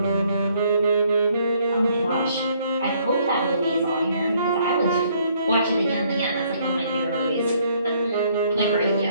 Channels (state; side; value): inverted; both; correlation -0.66